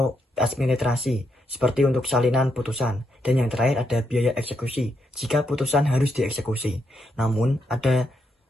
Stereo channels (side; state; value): both; normal; correlation 0.80